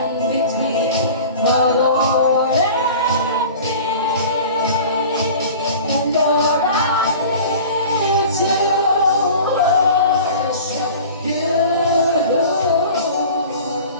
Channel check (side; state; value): both; inverted; correlation -0.41